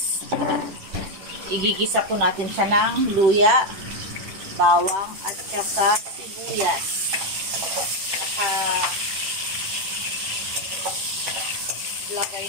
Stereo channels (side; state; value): left; late; 10 ms